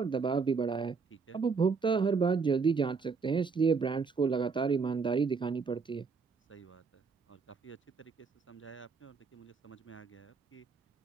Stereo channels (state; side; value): quieter; left; 5.0 dB